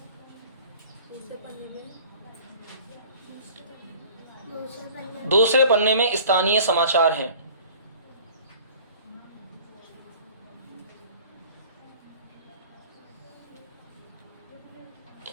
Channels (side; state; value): both; inverted; correlation -0.47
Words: दूसरे पन्ने में स्थानीय समाचार हैं।